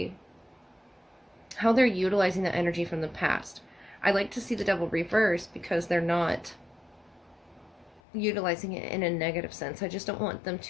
how they're utilizing the energy from the past. I like to see the Devil reverse because they're not utilizing it in a negative sense. I just don't want them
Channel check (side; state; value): right; drops out; at 8.0 s